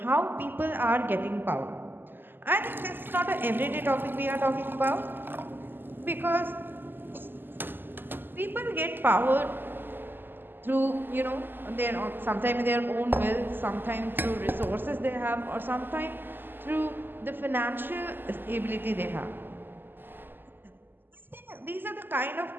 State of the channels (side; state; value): left; late; 0.093 ms